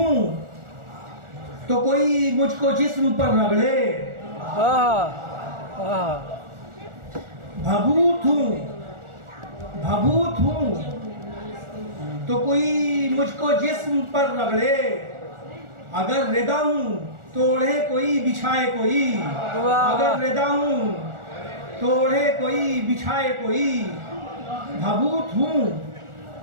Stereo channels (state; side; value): late; left; 1.4 ms